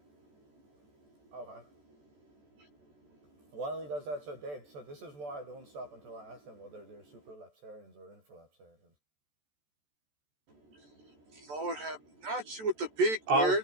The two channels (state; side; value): late; left; 14 ms